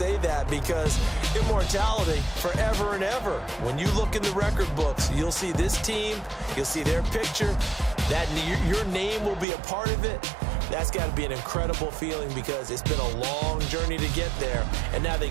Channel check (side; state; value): left; drops out; at 9.5 s